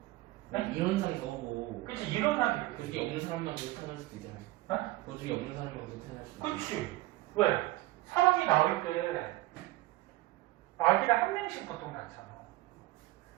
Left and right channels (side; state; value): left; quieter; 18.6 dB